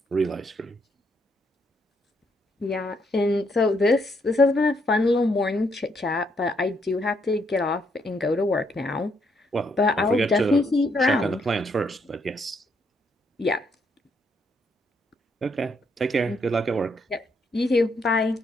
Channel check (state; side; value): normal; both; correlation 0.74